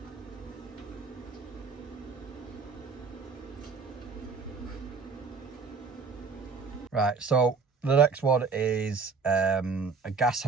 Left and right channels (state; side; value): quieter; left; 4.9 dB